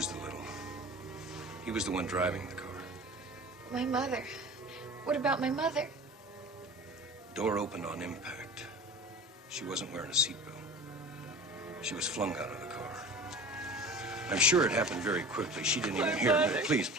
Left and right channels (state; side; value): normal; both; correlation 0.38